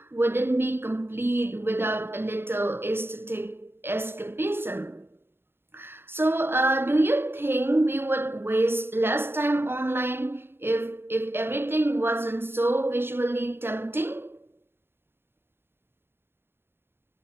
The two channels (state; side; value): late; left; 0.11 ms